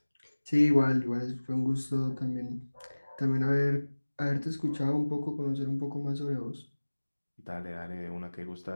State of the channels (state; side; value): inverted; both; correlation -1.00